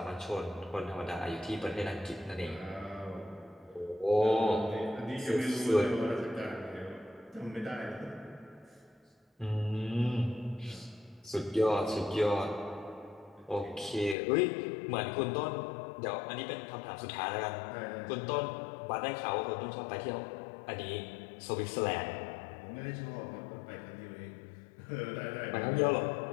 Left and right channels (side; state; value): right; drops out; at 14.2 s